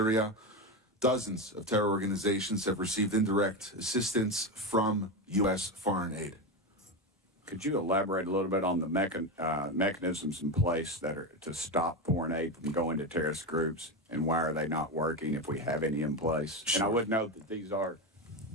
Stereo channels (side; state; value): both; normal; correlation 0.16